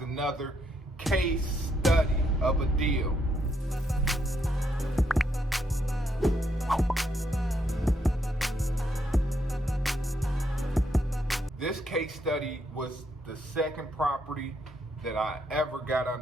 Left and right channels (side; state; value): both; normal; correlation 0.77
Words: case study of a deal. This case study was the second property that I ever got